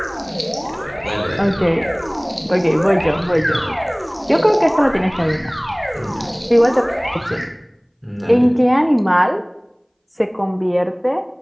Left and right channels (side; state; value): both; identical; correlation 1.00